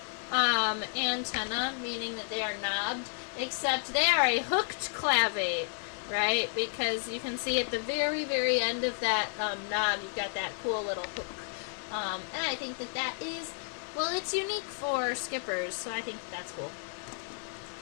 antenna, meaning that they are knobbed, except they are a hooked clavate, right? Because you can see at the very, very end of that knob, you've got that cool little hook. And I think that that is, well, it's unique for skippers, so I think that's cool.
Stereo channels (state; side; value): silent; right; 57 dB below the other